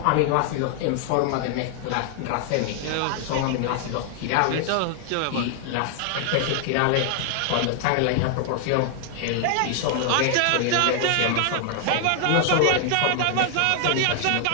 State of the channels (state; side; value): different; both; correlation 0.00